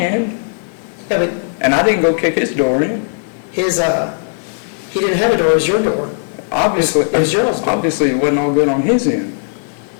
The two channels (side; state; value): right; silent; digital silence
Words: Yeah, but and I didn't go kick his door in. his, he didn't have a door, it was your door. Obviously, It was yours, though. obviously it wasn't all good on his end.